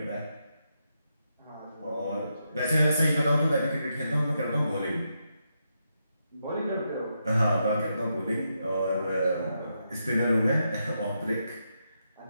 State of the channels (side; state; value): both; inverted; correlation -0.83